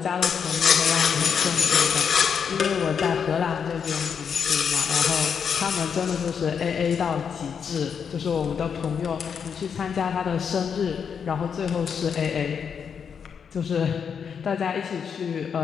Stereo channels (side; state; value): right; quieter; 6.9 dB